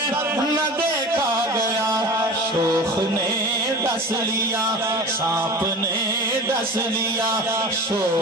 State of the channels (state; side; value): normal; both; correlation 0.35